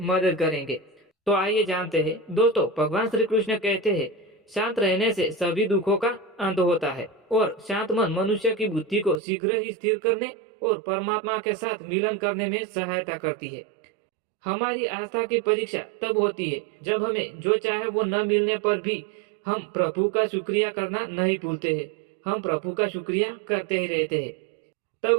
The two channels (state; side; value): drops out; left; at 9.2 s